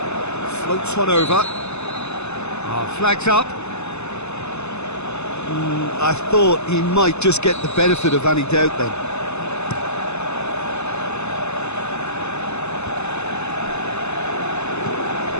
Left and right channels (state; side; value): late; right; 0.81 ms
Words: Floats one over. Flags up. I thought he might just get the benefit of any doubt then.